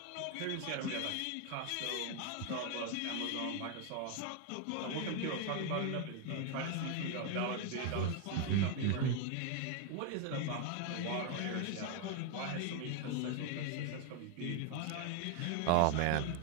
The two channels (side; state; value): both; different; correlation 0.01